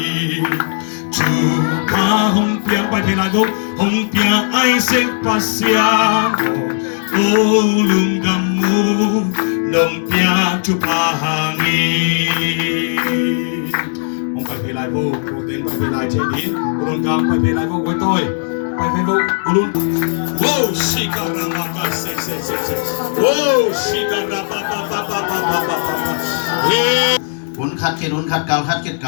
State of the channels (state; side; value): silent; right; digital silence